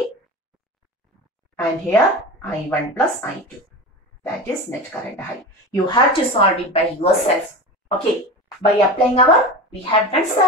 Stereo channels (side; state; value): both; normal; correlation 0.29